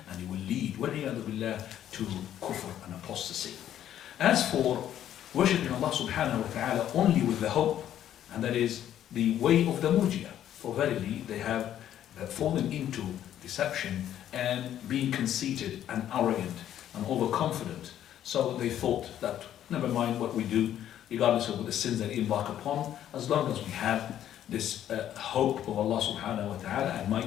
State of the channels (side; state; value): right; quieter; 11.1 dB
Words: and he will lead, وَالْعِيَاذُ بِاللَّهِ, to kufr and apostasy. As for worshipping Allah subhanahu wa ta'ala only with the hope, and that is the way of the murji'ah, for verily they have fallen into deception and being conceited and arrogant and overconfident. So they thought that never mind what we do, regardless of the sins that we embark upon, as long as we have this hope of Allah subhanahu wa ta'ala, and my